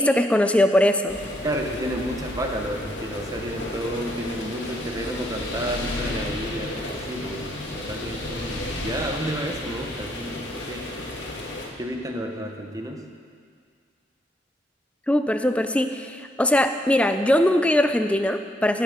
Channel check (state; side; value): normal; both; correlation 0.73